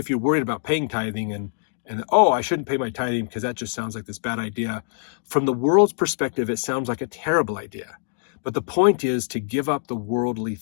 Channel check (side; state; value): right; silent; digital silence